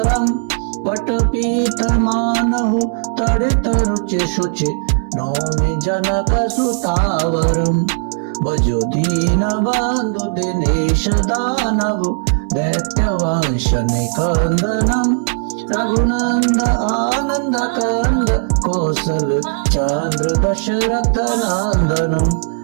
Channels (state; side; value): silent; left; digital silence